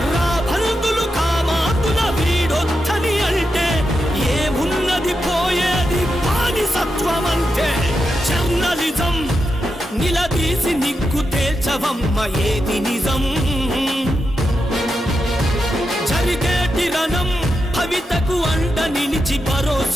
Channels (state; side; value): normal; both; correlation 0.87